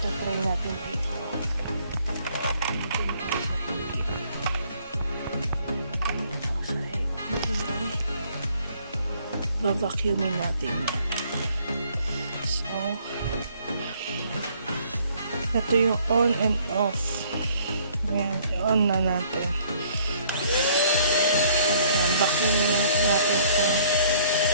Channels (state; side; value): inverted; both; correlation -0.61